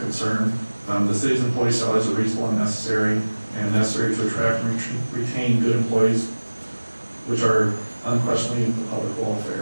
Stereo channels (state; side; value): inverted; both; correlation -1.00